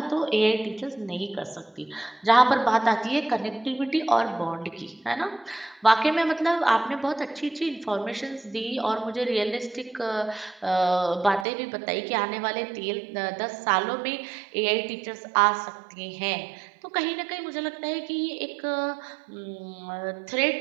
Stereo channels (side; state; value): left; drops out; at 11.5 s